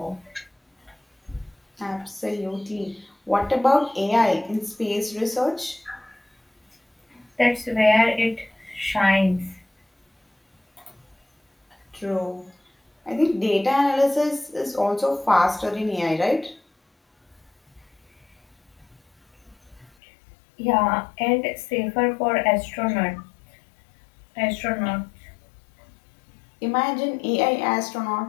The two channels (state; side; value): drops out; right; at 19.9 s